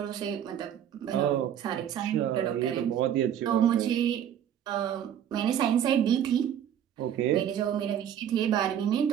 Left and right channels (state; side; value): quieter; left; 9.8 dB